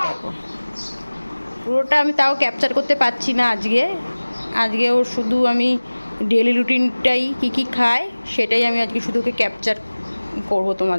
দেখো পুরোটা আমি তাও ক্যাপচার করতে পারছি না আজকে ওর শুধু আমি ডেলি রুটিনটাই কী কী খায় সেটাই আমি আজকে শুধু ওকে ক্যাপচার করবো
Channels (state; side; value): inverted; both; correlation -1.00